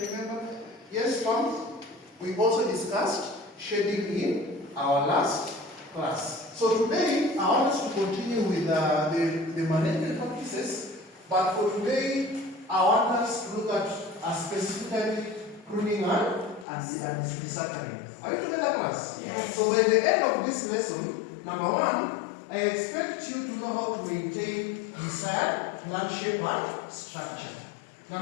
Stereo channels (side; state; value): right; drops out; at 16.7 s